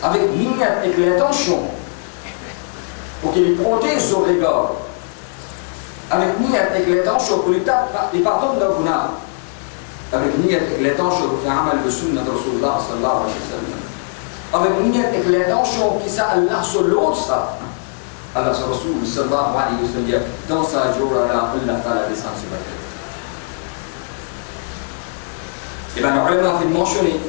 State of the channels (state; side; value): silent; right; digital silence